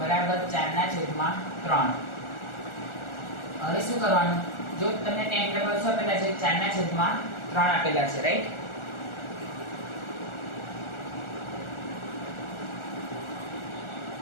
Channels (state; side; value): late; right; 1.4 ms